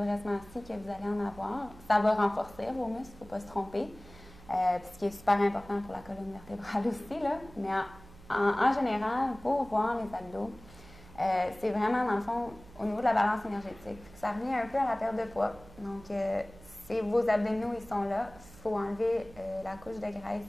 assis que vous allez en avoir. Ça va renforcer vos muscles, il ne faut pas se tromper. Ce qui est super important pour la colonne vertébrale aussi, là. Mais en général, pour voir les abdos, c'est vraiment, dans le fond, au niveau de la balance énergétique. Ça revient un peu à la perte de poids. Donc, vos abdominaux, ils sont là. Il faut enlever la couche de graisse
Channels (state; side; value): noise; right; hum, 21 dB below the sound